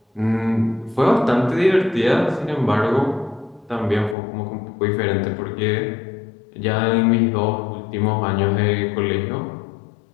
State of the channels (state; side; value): drops out; right; at 4.2 s